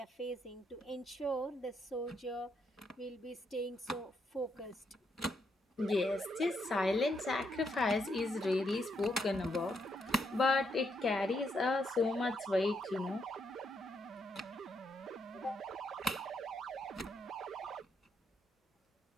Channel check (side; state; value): both; normal; correlation 0.77